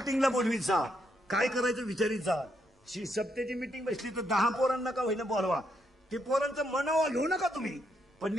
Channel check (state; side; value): normal; both; correlation 0.77